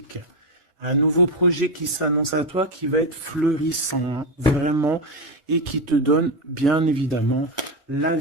Un nouveau projet qui s'annonce à toi, qui va être fleurissant, hein, vraiment, et qui te donne, bien évidemment, la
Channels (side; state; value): both; normal; correlation 0.11